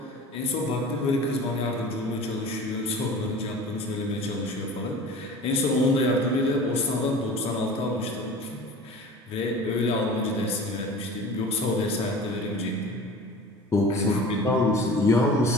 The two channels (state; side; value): normal; both; correlation 0.39